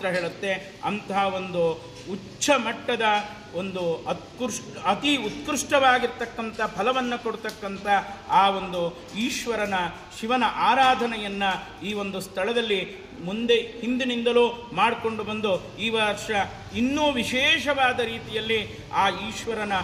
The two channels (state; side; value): identical; both; correlation 1.00